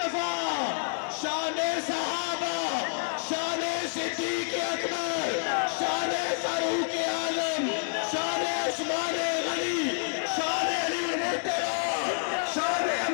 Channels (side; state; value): right; silent; 59 dB below the other